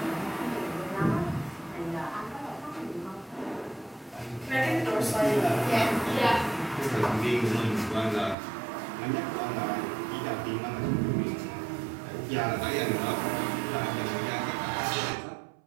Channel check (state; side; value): drops out; left; at 8.3 s